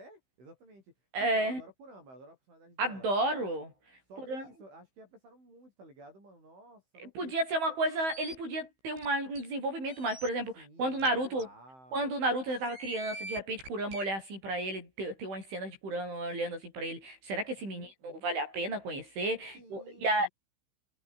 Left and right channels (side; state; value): left; late; 15 ms